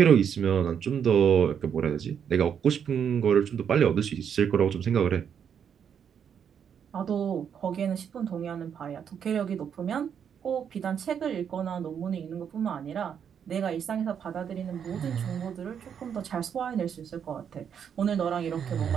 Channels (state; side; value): quieter; left; 8.0 dB